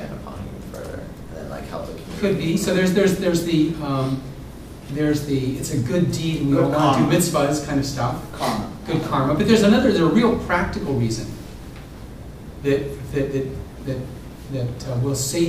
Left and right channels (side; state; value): both; identical; correlation 1.00